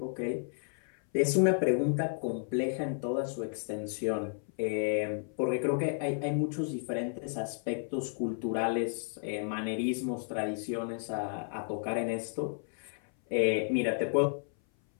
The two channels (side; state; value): right; silent; 56 dB below the other